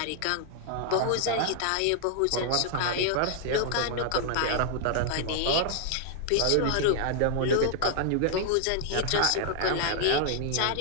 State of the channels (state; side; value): different; both; correlation 0.00